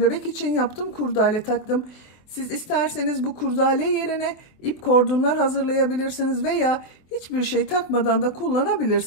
bebek için yaptım, kurdale taktım. Siz isterseniz bu kurdale yerine ip kordonlar hazırlayabilirsiniz veya hiçbir şey takmadan da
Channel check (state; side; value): late; right; 24 ms